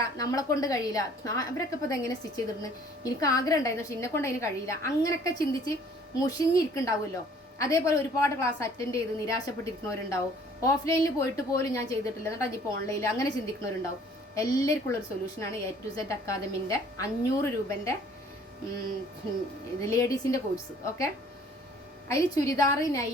നമ്മളെ കൊണ്ട് കഴിയില്ല, അവരൊക്കെ ഇപ്പോൾ ഇതെങ്ങനെ സ്റ്റിച്ച് ചെയ്തിരുന്നു, എനിക്ക് ആഗ്രഹം ഉണ്ടായിരുന്നു പക്ഷെ എന്നെ കൊണ്ട് അതിന് കഴിയില്ല, അങ്ങനെയൊക്കെ ചിന്തിച്ച് മുഷിഞ്ഞിരിക്കുന്നുണ്ടാവുമല്ലോ. അതേപോലെ ഒരുപാട് ക്ലാസ് അറ്റൻഡ് ചെയ്ത് നിരാശപ്പെട്ടിരിക്കുന്നവരുണ്ടാവും. ഓഫ്ലൈനിൽ പോയിട്ട് പോലും ഞാൻ ചെയ്തിട്ടില്ല, എന്നിട്ട് അതിപ്പോൾ ഓൺലൈനിൽ അങ്ങനെ ചിന്തിക്കുന്നവരുണ്ടാവും. എല്ലാവർക്കും ഉള്ളൊരു സൊല്യൂഷനാണ് A to Z അക്കാദമിൻ്റെ 500 രൂപൻ്റെ ലേഡീസിൻ്റെ കോഴ്സ്. ഓക്കെ, അതിൽ ചുരിദാർ,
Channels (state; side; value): normal; both; correlation 0.55